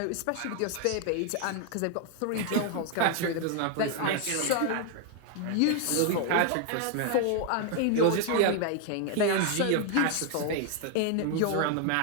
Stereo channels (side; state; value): both; different; correlation 0.00